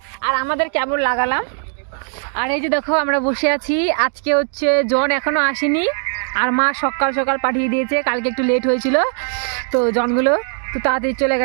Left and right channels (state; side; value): silent; left; 58 dB below the other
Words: আর আমাদের কেমন লাগালাম। আর এই যে দেখো আমরা বসে আছি, আজকে হচ্ছে জন এখনো আসেনি, আর মা সকাল সকাল পাঠিয়ে দিয়েছে, কালকে একটু লেট হয়েছিল তো জনগুলো তো তাড়াতাড়ি চলে